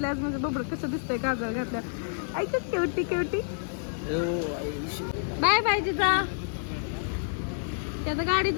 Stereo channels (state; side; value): silent; right; 56 dB below the other